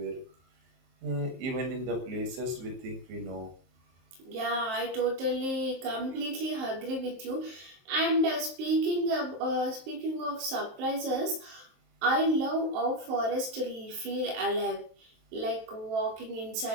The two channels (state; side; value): late; left; 23 ms